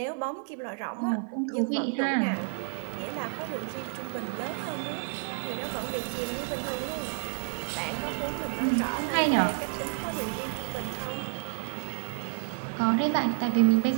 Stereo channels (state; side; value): silent; left; 56 dB below the other